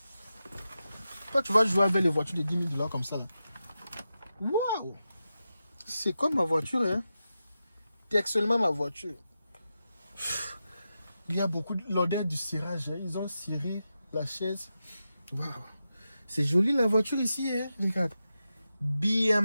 Toi, tu vas jouer avec les voitures de 10 000 $ comme ça. Waouh! C'est comme ma voiture, hein? C'est actuellement ma voiture. Il y a beaucoup de l'odeur du cirage. Hein? Ils ont ciré la chaise. Waouh! C'est joli la voiture ici, hein? Regarde.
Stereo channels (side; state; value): both; inverted; correlation -0.90